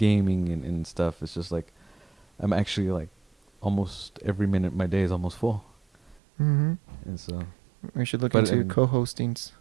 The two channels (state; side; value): drops out; left; at 6.2 s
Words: and stuff. It's just like I'm actually like almost every minute of my day is almost full. Mm-hmm. And so, We should look But, into I mean, co-hostings.